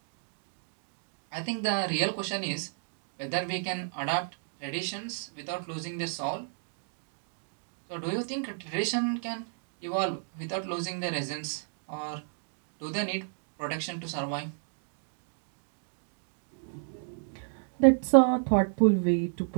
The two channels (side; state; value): left; silent; digital silence